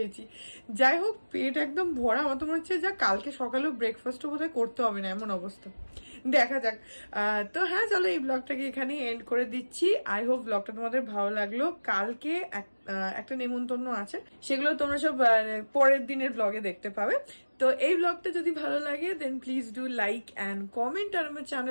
যাই হোক পেট একদম ভরা। আমার তো মনে হচ্ছে যা কালকে সকালেও ব্রেকফাস্টও বোধহয় করতে হবে না, এমন অবস্থা। দেখা যাক। তো হ্যাঁ চলো এই ব্লগটাকে এখানে এন্ড করে দিচ্ছি। আই হোপ ব্লগটা তোমাদের ভালো লাগলো। কালকে একটা নেমন্তন্ন আছে, সেগুলো তোমরা সব পরের দিনের ব্লগে দেখতে পাবে। তো এই ব্লগটা যদি ভালো লাগে then please do like and comment. আর আমার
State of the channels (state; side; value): inverted; both; correlation -1.00